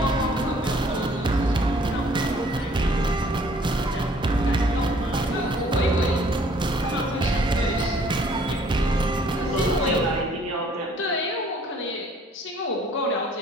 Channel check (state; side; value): normal; both; correlation 0.58